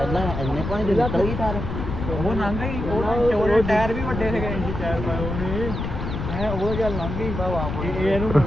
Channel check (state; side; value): noise; left; rumble, 5 dB below the sound